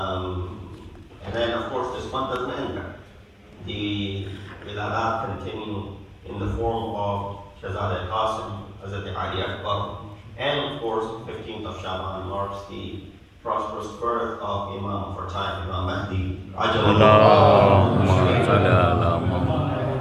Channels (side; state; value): both; identical; correlation 1.00